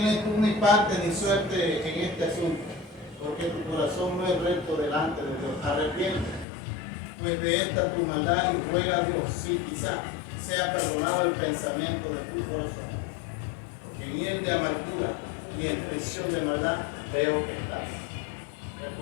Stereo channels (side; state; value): right; drops out; at 6.5 s